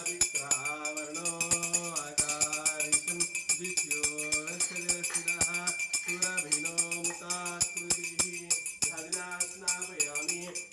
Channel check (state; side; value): identical; both; correlation 1.00